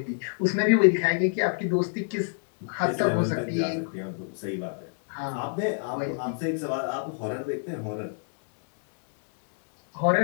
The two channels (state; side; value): silent; right; digital silence